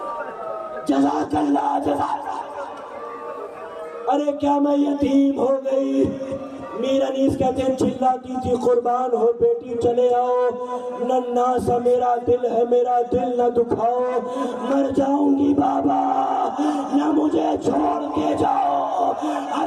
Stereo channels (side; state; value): both; identical; correlation 1.00